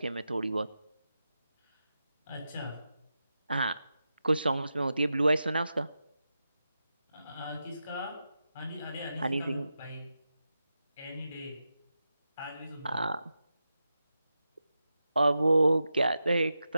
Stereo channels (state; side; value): inverted; both; correlation -0.90